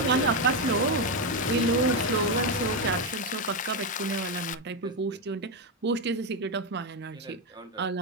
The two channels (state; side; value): normal; both; correlation 0.07